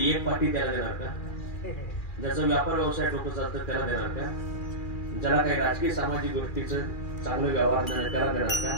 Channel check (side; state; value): right; late; 2.4 ms